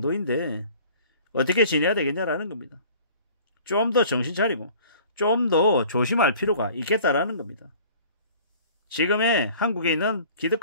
어떻게 지내야 되겠냐라는 겁니다. 좀 더 정신 차리고 좀 더 조심할 필요가 있겠다라는 겁니다. 지금의 한국에 있는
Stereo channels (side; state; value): both; inverted; correlation -0.48